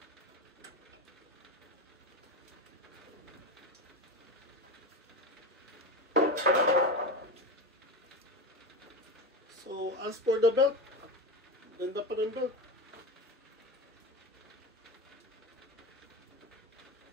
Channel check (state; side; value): normal; both; correlation 0.20